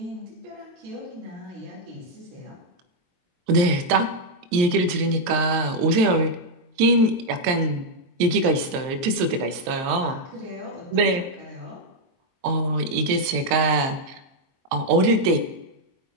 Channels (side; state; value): left; late; 23 ms